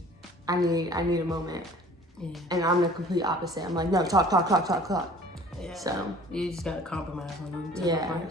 I need a moment. Yeah. And I'm the complete opposite. I'm like, no, talk. Yeah. So you just gotta compromise on them type of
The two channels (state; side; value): normal; both; correlation 0.49